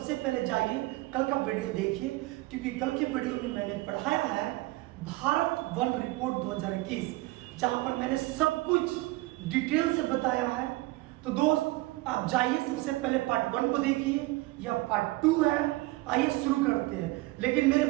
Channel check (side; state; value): left; quieter; 20.6 dB